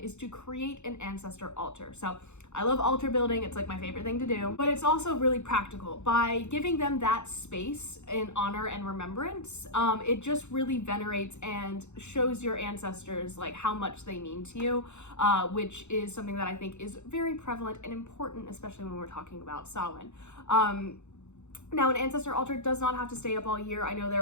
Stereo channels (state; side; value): late; right; 0.83 ms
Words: to create an ancestor altar. So I love altar building, it's like my favorite thing to do, but it's also really practical. By giving them that space in honor and remembrance, it just really venerates and shows your ancestors like how much they mean to you, which is something that I think is very prevalent and important, especially when we're talking about Samhain. Now, an ancestor altar does not have to stay up all year. I know